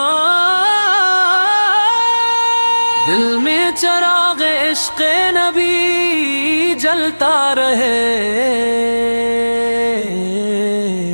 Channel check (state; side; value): inverted; both; correlation -1.00